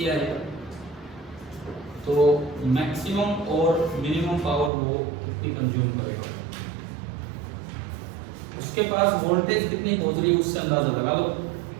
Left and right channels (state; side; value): drops out; left; at 4.7 s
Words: है, तो मैक्सिमम और मिनिमम पावर वो कितनी कंज्यूम करेगा, उसके पास वोल्टेज कितनी पहुंच रही है उससे अंदाजा लगा लो।